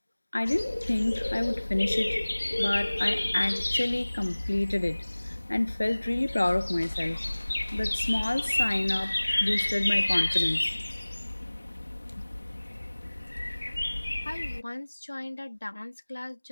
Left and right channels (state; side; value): inverted; both; correlation -1.00